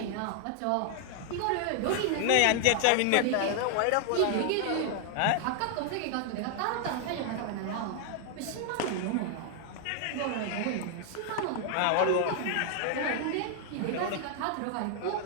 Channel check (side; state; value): both; different; correlation 0.00